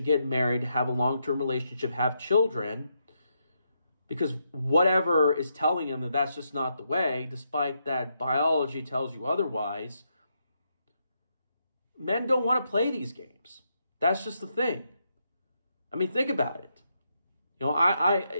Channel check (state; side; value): inverted; both; correlation -0.80